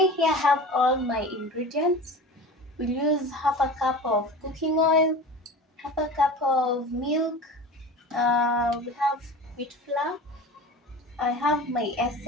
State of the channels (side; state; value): both; normal; correlation 0.34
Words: here, I have all my ingredients. We'll use half a cup of cooking oil, half a cup of milk. We have wheat flour. I have my